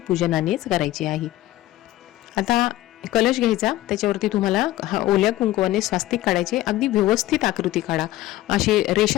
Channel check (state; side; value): quieter; right; 15.7 dB